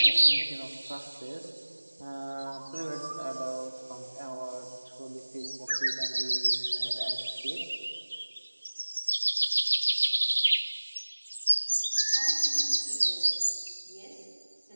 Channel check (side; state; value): both; inverted; correlation -1.00